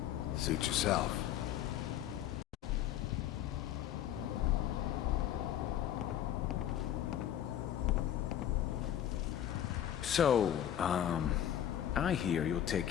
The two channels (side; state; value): right; quieter; 10.9 dB